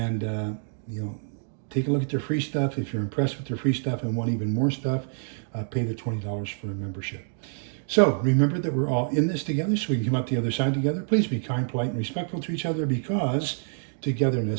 take a look at their free stuff. If you're impressed with their free stuff and want even more stuff, pay the $20 for a membership. So remember that we're all in this together, so we can come out the other side together. Please be kind, polite, and respectful to each other, because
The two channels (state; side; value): silent; left; digital silence